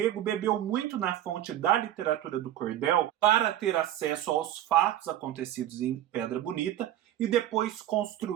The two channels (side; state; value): left; quieter; 12.5 dB